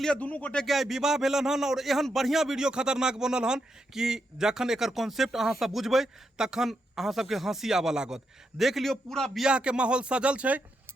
दुनू गोटे के आई विवाह भेलन हन और एहन बढ़िया वीडियो खतरनाक बनल हन कि जखन एकर कॉन्सेप्ट अहाँ सब बुझबै तखन अहाँ सबके हंसी आबऽ लागत। देख लियो पूरा बियाह के माहौल सजल छै,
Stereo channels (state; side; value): normal; both; correlation 0.83